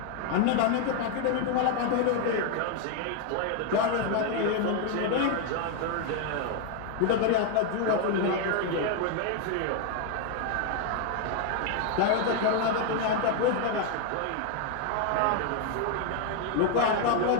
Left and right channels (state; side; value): different; both; correlation 0.01